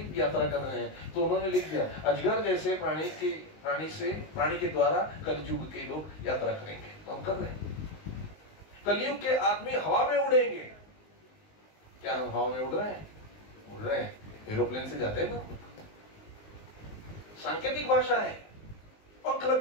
यात्रा कर रहे हैं, तो उन्होंने लिख दिया अजगर जैसे प्राणी के द्वारा कलयुग के लोग यात्रा करेंगे। तो हम कर रहे हैं। कलयुग के आदमी हवा में उड़ेंगे। क्या हम हवा में उड़ रहे हैं? उड़ रहे हैं, एरोप्लेन से जाते हैं ना। सांकेतिक भाषा है। पंख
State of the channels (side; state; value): right; late; 19 ms